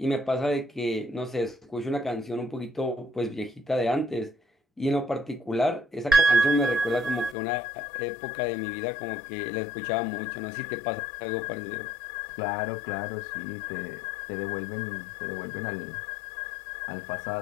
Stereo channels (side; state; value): right; drops out; at 7.4 s